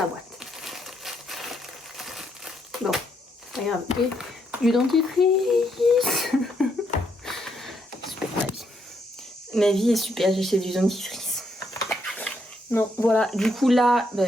boîte. Bon, regarde. Et du dentifrice. Super, ma vie. Ma vie est super, j'ai acheté du dentifrice. Non, voilà. Du coup, là,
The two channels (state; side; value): normal; both; correlation 0.76